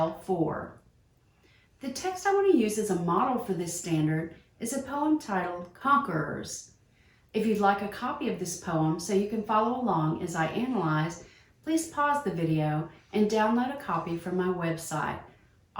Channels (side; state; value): both; identical; correlation 1.00